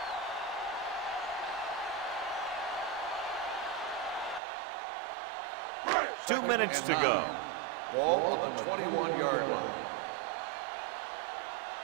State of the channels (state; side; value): drops out; left; at 4.4 s